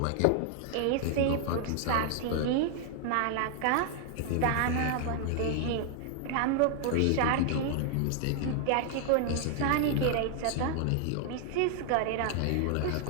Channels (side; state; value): both; different; correlation 0.00